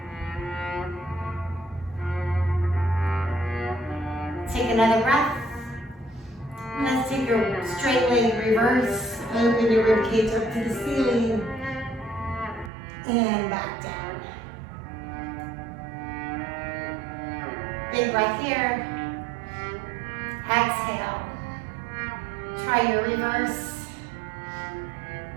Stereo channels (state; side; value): drops out; left; at 12.7 s